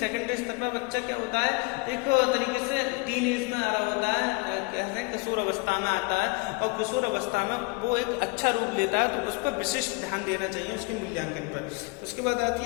स्तर पर बच्चा क्या होता है, एक तरीके से टीन एज में आ रहा होता है, कैसे किशोर अवस्था में आता है, और किशोर अवस्था में वो एक अच्छा रूप लेता है, तो उस पर विशिष्ट ध्यान देना चाहिए उसके मूल्यांकन पर। उसके बाद आती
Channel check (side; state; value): right; quieter; 27.5 dB